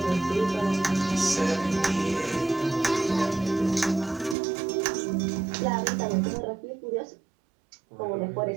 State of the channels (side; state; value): left; drops out; at 4.4 s